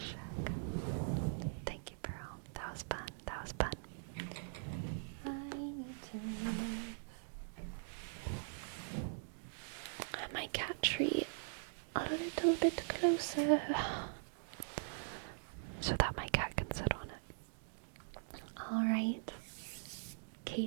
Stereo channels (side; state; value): left; silent; digital silence